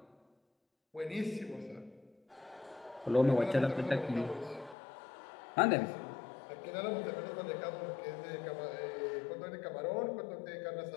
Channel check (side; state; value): right; drops out; at 4.8 s